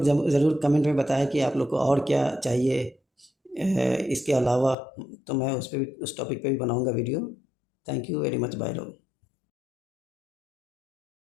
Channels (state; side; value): drops out; right; at 4.8 s